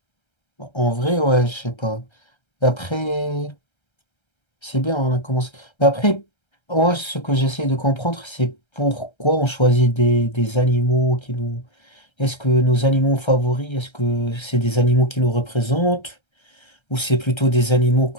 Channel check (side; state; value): right; late; 1.3 ms